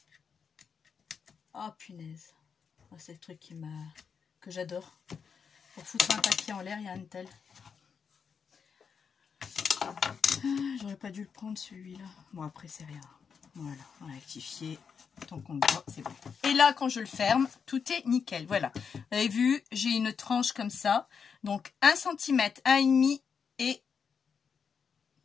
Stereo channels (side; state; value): right; quieter; 6.3 dB